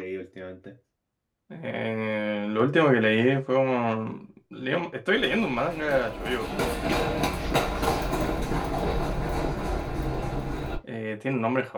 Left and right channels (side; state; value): both; identical; correlation 1.00